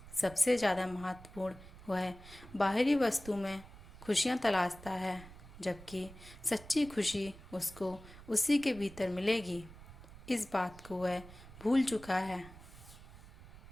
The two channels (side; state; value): right; noise; rumble, 18 dB below the sound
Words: सबसे ज़्यादा महत्वपूर्ण वह बाहरी वस्तु में खुशियाँ तलाशता है, जबकि सच्ची खुशी उसको उसी के भीतर मिलेगी। इस बात को वह भूल चुका है।